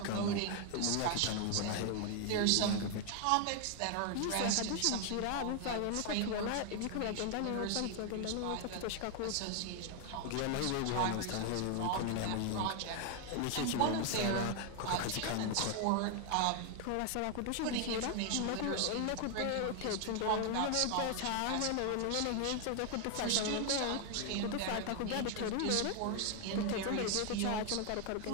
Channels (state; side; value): different; both; correlation 0.00